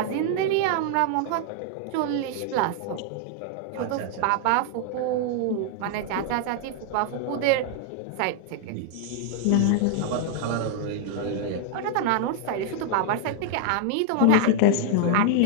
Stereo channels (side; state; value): both; different; correlation 0.00